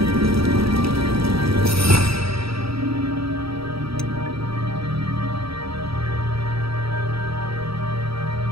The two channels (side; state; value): left; late; 0.77 ms